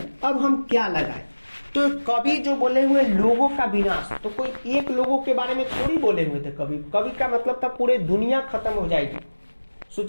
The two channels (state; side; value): inverted; both; correlation -1.00